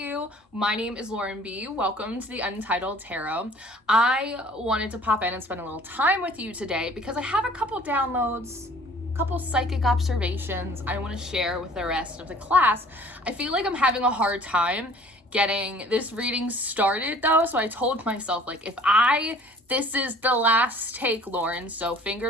My name is Lauren B. Welcome to the Untitled Tarot. I wanted to pop in and spend a little time with you today because I have a couple downloads, a couple psychic observations I want to share with the rest of the class. I feel like I'm having a hard time getting this reading started though, so I told myself, like, this is the last take, Lauren, so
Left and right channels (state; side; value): normal; both; correlation 0.51